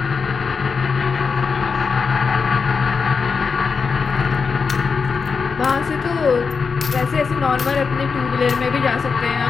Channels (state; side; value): quieter; right; 5.3 dB